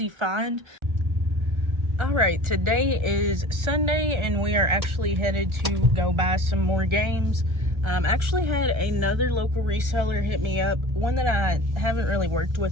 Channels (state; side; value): late; left; 1.4 ms